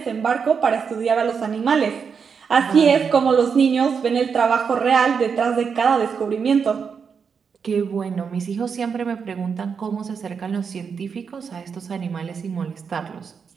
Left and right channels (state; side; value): quieter; left; 6.2 dB